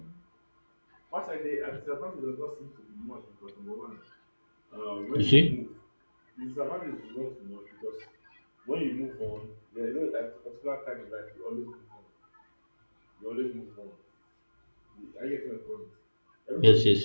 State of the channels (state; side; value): inverted; both; correlation -1.00